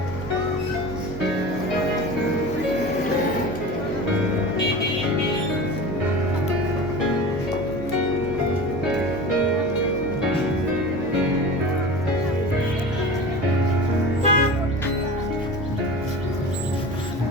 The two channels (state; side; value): normal; both; correlation 0.33